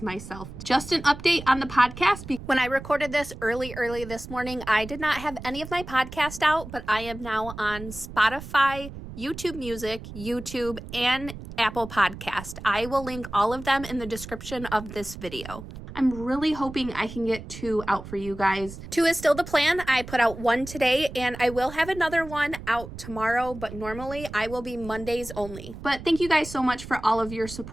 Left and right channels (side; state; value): right; noise; rumble, 12 dB below the sound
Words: myself. Just an update on the podcast. When I recorded this early this morning, I did not have any of my podcast out, but I am now on Spotify, YouTube Music, YouTube, and Apple Podcast. I will link all of them in the description of this video. I'm really hoping I can get 2 out for you guys. 2 is still the plan. I put out 1 today, and I will have another one out tomorrow, but normally I will be Mondays only. But thank you guys so much for all of your